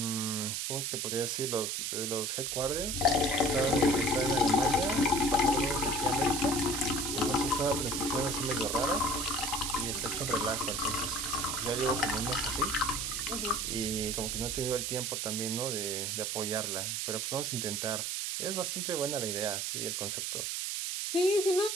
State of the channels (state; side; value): noise; right; hiss, 1 dB below the sound